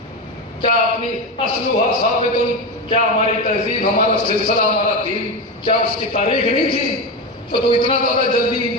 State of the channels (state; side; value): normal; both; correlation 0.17